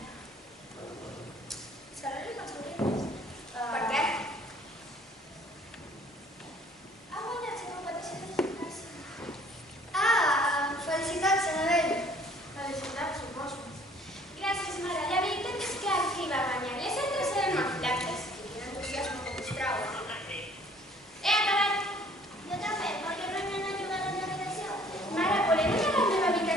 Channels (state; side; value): normal; both; correlation 0.56